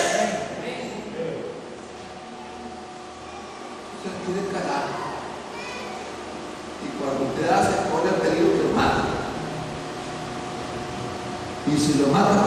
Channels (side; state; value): both; identical; correlation 1.00